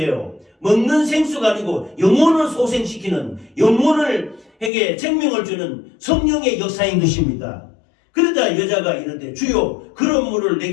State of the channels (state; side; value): drops out; right; at 4.7 s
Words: 먹는 생수가 아니고 영혼을 소생시키는, 영혼에게 생명을 주는 성령의 역사인 것입니다. 그러자 여자가 이르되 주여 그런 물을